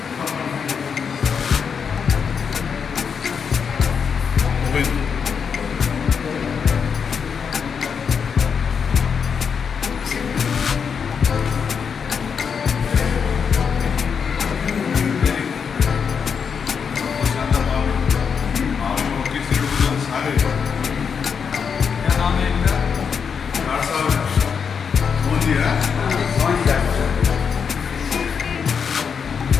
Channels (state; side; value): quieter; right; 6.5 dB